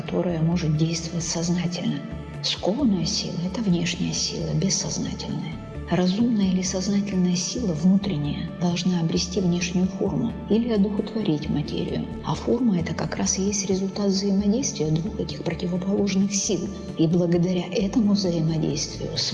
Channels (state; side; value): identical; both; correlation 1.00